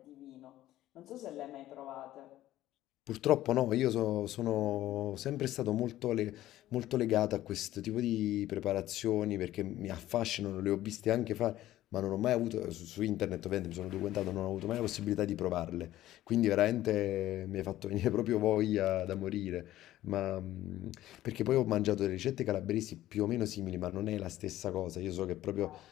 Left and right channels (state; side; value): quieter; right; 14.4 dB